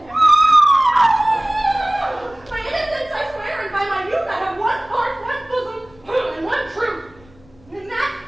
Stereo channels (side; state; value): left; noise; rumble, 27 dB below the sound